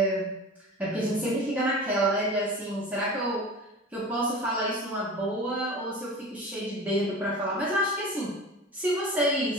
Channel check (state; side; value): normal; both; correlation 0.35